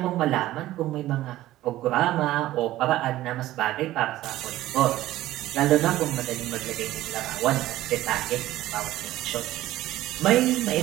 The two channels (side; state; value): left; quieter; 15.3 dB